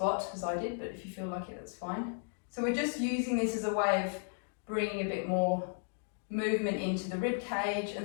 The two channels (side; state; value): right; silent; 55 dB below the other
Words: as I did, but if you feel like it, that's fine. So we're just using this as a way of bringing a bit more movement into the rib cage